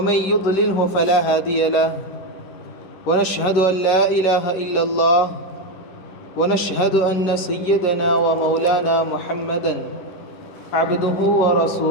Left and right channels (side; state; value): right; late; 11 ms